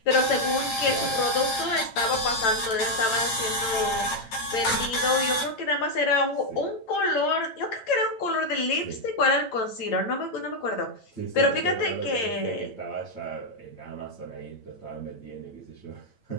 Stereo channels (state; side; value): late; right; 8.9 ms